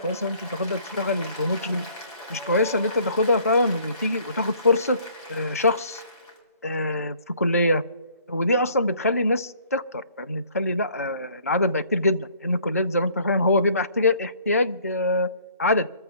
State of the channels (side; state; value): both; inverted; correlation -0.59